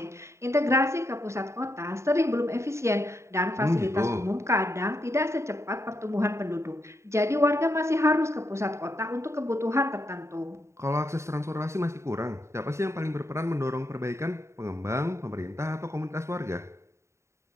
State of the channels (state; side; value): late; left; 0.14 ms